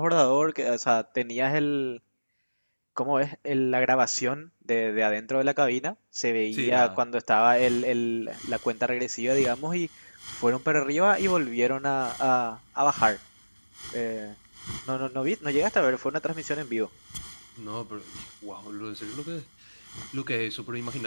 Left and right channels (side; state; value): both; inverted; correlation -1.00